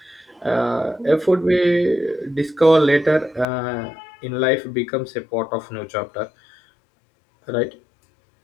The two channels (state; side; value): drops out; right; at 3.5 s